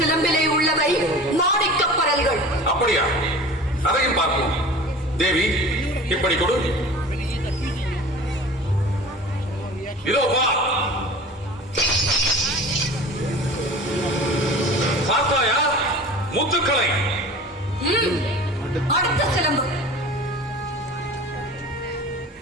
உள்ளவை மாணிக்க பரல்கள். அப்படியா? அதையும் பார்ப்போம். தேவி, இப்படி கொடு. இதோ வா. பார்த்தாயா முத்துக்களை? அடுத்த சிலம்பு.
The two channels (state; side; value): normal; both; correlation 0.40